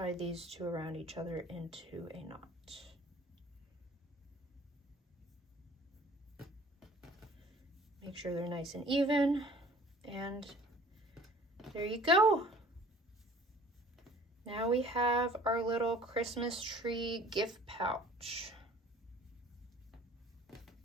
these 2 around each other into a knot. Make sure they're nice and even, and there you go. Now we have our little Christmas tree gift pouch.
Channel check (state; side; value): normal; both; correlation 0.50